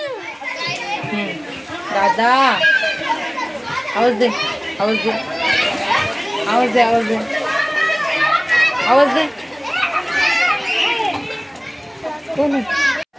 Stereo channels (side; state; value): both; identical; correlation 1.00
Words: दादा आवाज दे, आवाज दे, आवाज दे, आवाज दे, आवाज दे. कोण